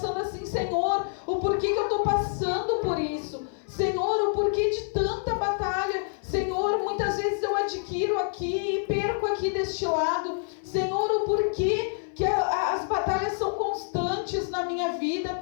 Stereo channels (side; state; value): right; silent; digital silence